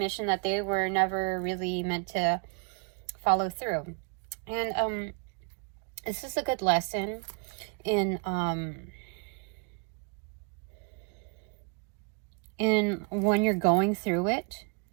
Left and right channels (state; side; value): quieter; left; 34.1 dB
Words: that they were never really meant to follow through. And this is a good lesson in when you're going through it,